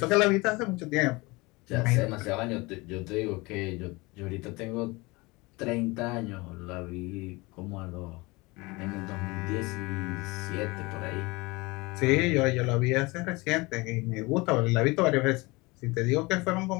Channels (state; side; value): quieter; right; 24.0 dB